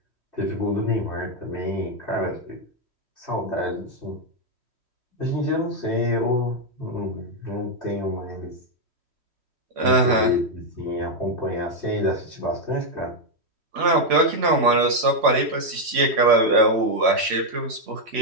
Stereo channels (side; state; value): left; late; 3.1 ms